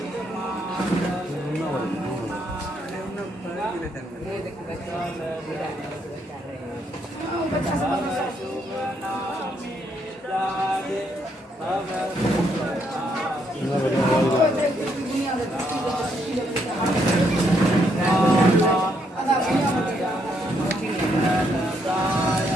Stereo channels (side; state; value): both; normal; correlation 0.74